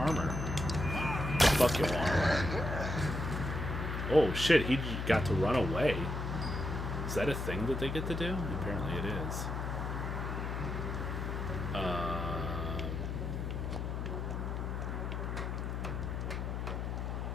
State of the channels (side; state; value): left; noise; hum, 3 dB below the sound